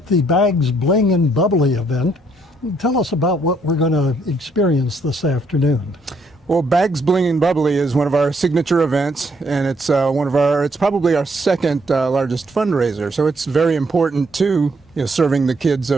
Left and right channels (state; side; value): normal; both; correlation 0.70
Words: the Bags, Bling, and Bubbly event. Tell us about what we're going to experience this afternoon. Well, Bags, Bling, and Bubbly is one of our signature events, and it's it's probably our second largest fundraiser. So it's very important to serving the kids